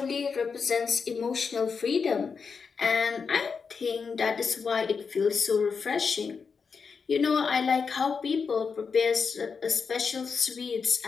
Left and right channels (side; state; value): right; quieter; 5.5 dB